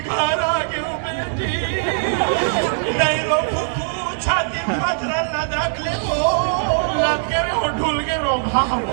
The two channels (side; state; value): left; silent; digital silence